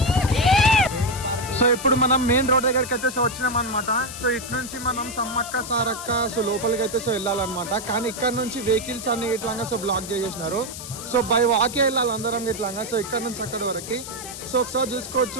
సో ఇప్పుడు మనం మెయిన్ రోడ్ దగ్గరికి అయితే సో వచ్చినాం అనమాట. సో ఇటు నుంచి మనం సమ్మక్క సారక్క సో లోపలికి అయితే సో వెళ్ళాలన్నమాట. కానీ ఇక్కడ నుంచి వెహికల్స్ అన్ని ఇట్లాగా సో బ్లాక్ చేసేసినారు. సో బై వాకే వెళ్ళాలి అందరం ఇట్లాగా. సో ఇక్కడ నుంచి అక్కడి వరకు సో ఒకసారి చూసుకోవచ్చు.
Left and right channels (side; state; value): left; noise; hiss, 10 dB below the sound